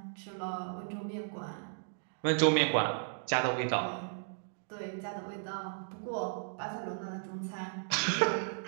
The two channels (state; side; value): silent; left; digital silence